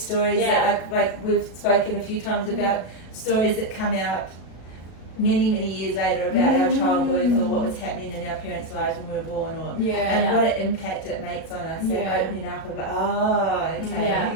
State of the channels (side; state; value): right; late; 37 ms